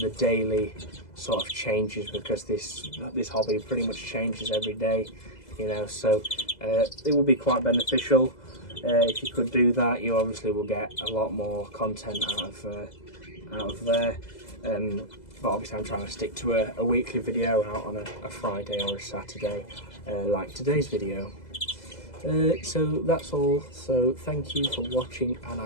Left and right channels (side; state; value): right; late; 2.0 ms